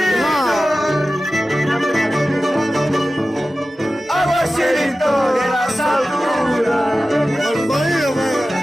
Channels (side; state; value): both; normal; correlation 0.95